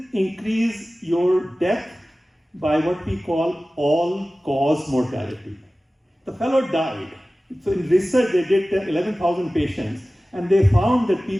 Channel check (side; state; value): both; normal; correlation 0.97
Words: increase your death by what we call all-cause mortality. The fellow died. So in research, they did 11,000 patients, and they found that